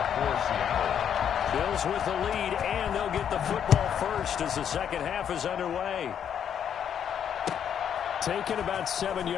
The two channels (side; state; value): right; quieter; 8.7 dB